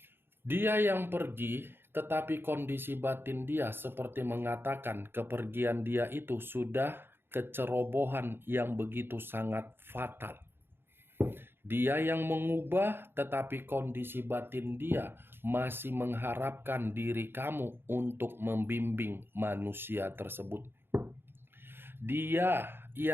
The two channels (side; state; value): left; late; 0.11 ms